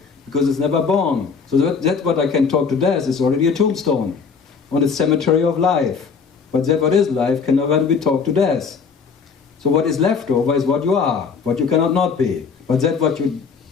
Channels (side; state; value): right; quieter; 5.6 dB